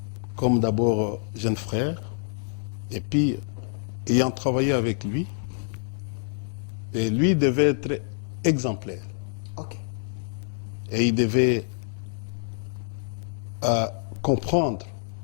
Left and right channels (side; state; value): right; silent; digital silence